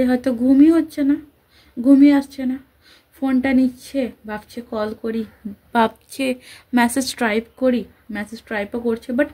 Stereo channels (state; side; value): identical; both; correlation 1.00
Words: হয়তো ঘুমই আসছে না, ফোনটা নিচ্ছে, ভাবছে কল করি, ভাবছে মেসেজ টাইপও করছে, বাট